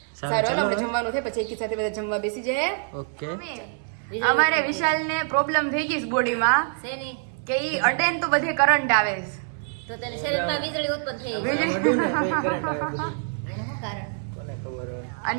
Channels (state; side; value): silent; left; digital silence